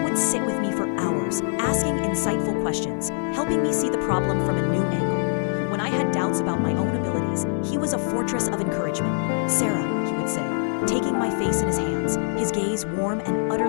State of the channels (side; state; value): right; silent; digital silence